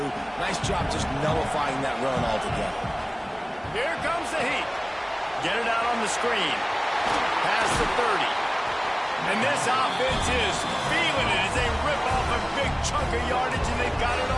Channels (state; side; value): identical; both; correlation 1.00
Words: Nice job just nullifying that run altogether. Here comes the heat. Get it out on the screen. Past the 30. And this offense is feeling it as they rip off a big chunk of yardage, and they've got it